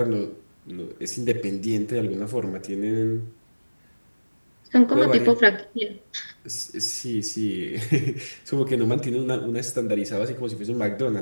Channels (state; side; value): inverted; both; correlation -1.00